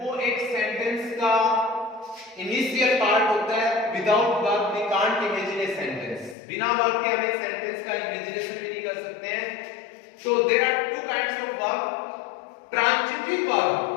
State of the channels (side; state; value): right; drops out; at 6.4 s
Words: एक सेंटेंस का इनिशियल पार्ट होता है। Without verb we can't imagine a sentence. बिना वर्ब के हम एक सेंटेंस का इमेजिनेशन भी नहीं कर सकते हैं। तो there are two kinds of verb. Transitive verb,